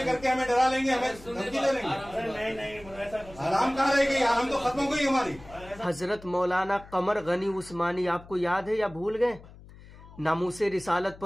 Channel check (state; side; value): noise; left; hum, 20 dB below the sound